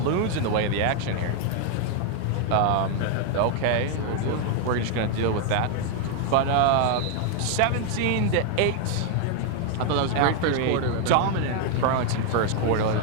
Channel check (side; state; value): both; different; correlation 0.01